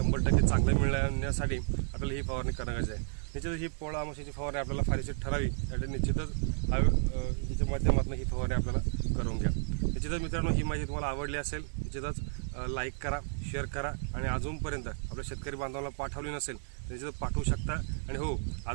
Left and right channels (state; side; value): silent; left; 56 dB below the other